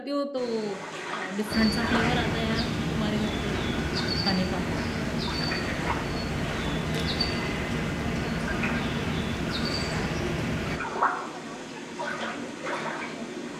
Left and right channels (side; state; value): both; identical; correlation 1.00